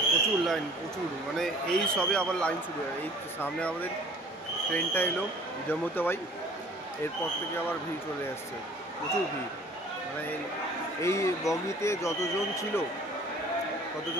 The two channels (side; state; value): both; normal; correlation 0.51